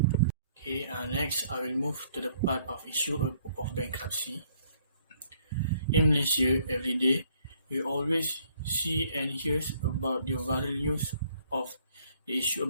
Okay, next I will move to the part of issue of bankruptcy. In Malaysia, every day we always see and hear about the viral news of the issue of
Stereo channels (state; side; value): inverted; both; correlation -0.65